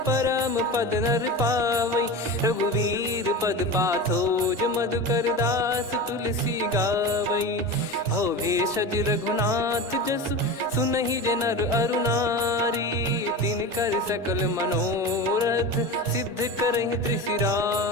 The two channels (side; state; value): both; normal; correlation 0.27